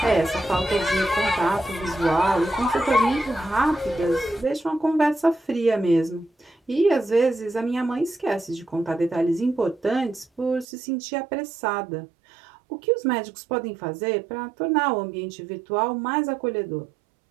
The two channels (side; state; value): left; drops out; at 10.7 s